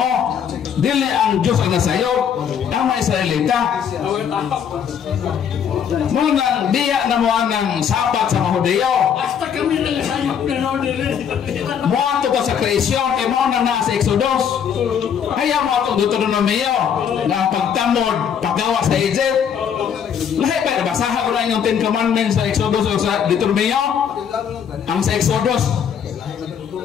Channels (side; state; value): right; quieter; 8.0 dB